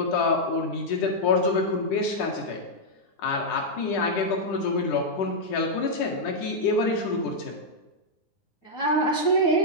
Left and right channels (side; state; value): right; late; 10 ms